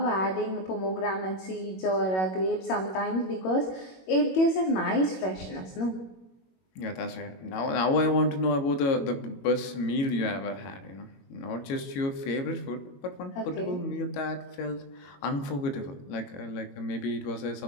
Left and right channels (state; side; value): late; right; 21 ms